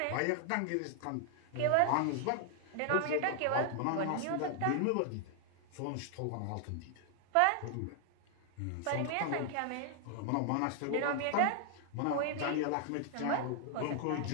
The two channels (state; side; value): different; both; correlation 0.00